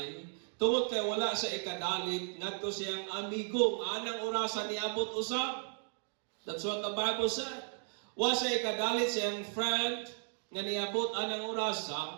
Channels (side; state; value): left; silent; 54 dB below the other